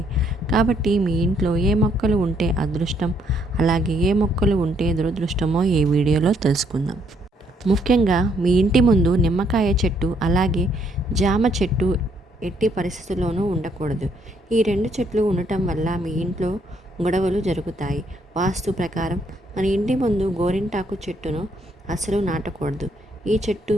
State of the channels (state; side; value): normal; both; correlation 0.70